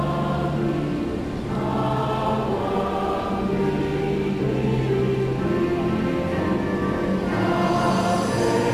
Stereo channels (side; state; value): both; identical; correlation 1.00